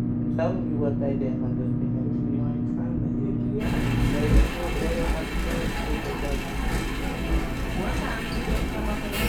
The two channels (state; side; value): identical; both; correlation 1.00